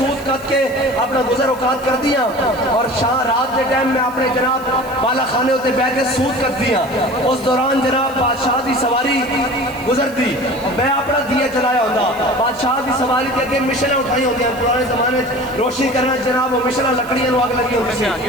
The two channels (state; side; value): noise; right; hiss, 22 dB below the sound